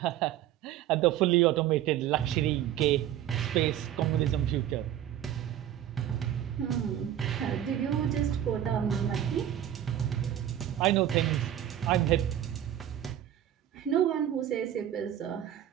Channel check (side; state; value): left; quieter; 11.2 dB